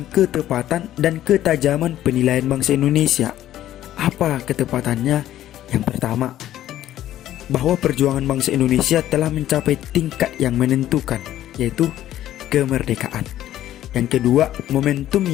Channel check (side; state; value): right; quieter; 12.8 dB